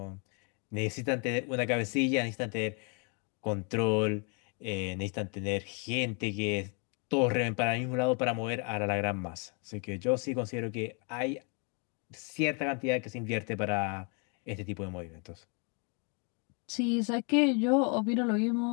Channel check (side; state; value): right; quieter; 36.2 dB